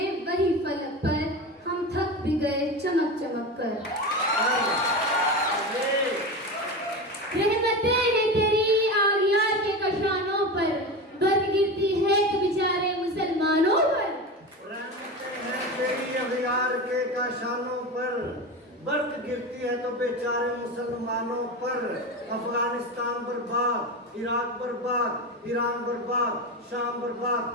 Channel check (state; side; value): normal; both; correlation 0.24